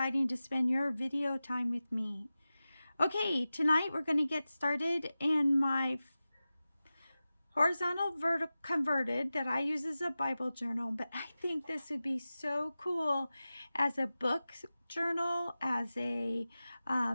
to spend your video time with me. Okay, tonight we're going to get started in my horizontal converted that I use as a Bible journal, but I think this would be so cool as a book journal, as a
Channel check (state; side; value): inverted; both; correlation -0.95